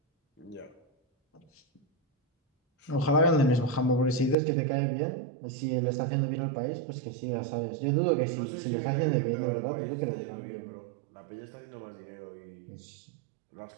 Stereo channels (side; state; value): left; drops out; at 4.4 s